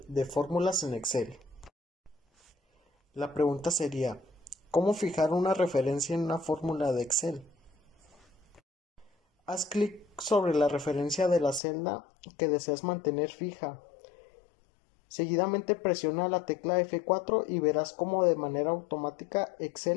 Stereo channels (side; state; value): right; drops out; at 11.6 s